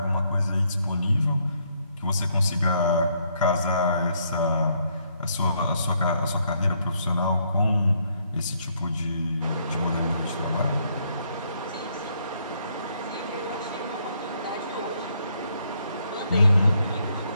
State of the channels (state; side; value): inverted; both; correlation -0.72